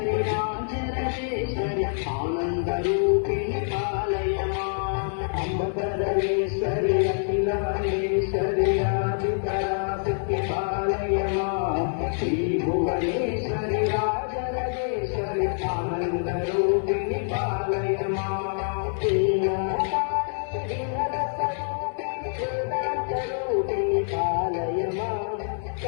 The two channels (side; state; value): right; silent; 61 dB below the other